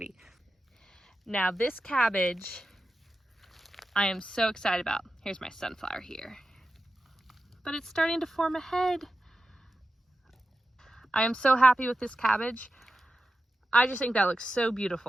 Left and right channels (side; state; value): both; normal; correlation 0.92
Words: Now this cabbage, I am so excited about. Here's my sunflower here. But it's starting to form a head. I am so happy with this cabbage. I just think that looks so